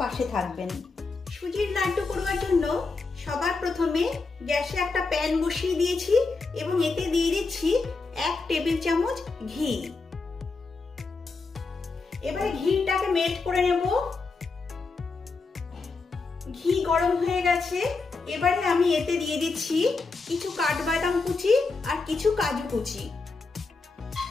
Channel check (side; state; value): right; quieter; 4.0 dB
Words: পাশে থাকবেন। সুজির লাড্ডু করবার জন্য সবার প্রথমে গ্যাসে একটা প্যান বসিয়ে দিয়েছি এবং এতে দিয়ে দিচ্ছি 1 টেবিল চামচ ঘি। এবারে ঘিটাকে মেল্ট করে নেব। ঘি গরম হয়ে গেছে। এবারে আমি এতে দিয়ে দিচ্ছি কিছু কাঠবাদাম কুচি আর কিছু কাজু কুচি।